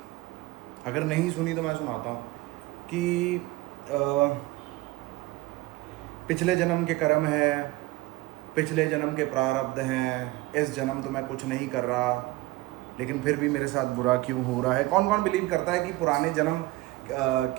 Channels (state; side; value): quieter; left; 20.0 dB